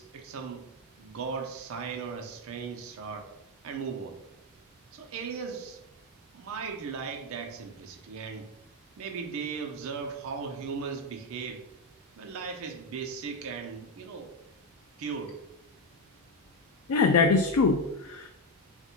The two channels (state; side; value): normal; both; correlation 0.08